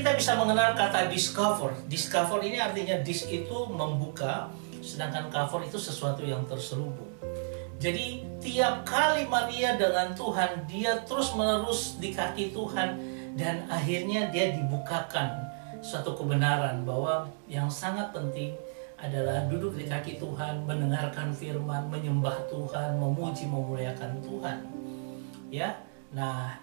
bisa mengenal kata discover. Discover ini artinya dis itu membuka, sedangkan cover itu sesuatu yang terselubung. Jadi tiap kali Maria dengan Tuhan, dia terus menerus di kaki Tuhan, dan akhirnya dia dibukakan suatu kebenaran bahwa yang sangat penting adalah duduk di kaki Tuhan, mendengarkan firman, menyembah Tuhan, memuji, memuliakan Tuhan. Ya, nah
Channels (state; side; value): silent; left; digital silence